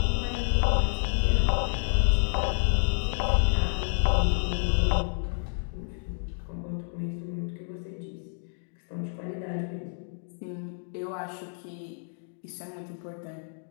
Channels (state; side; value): silent; right; digital silence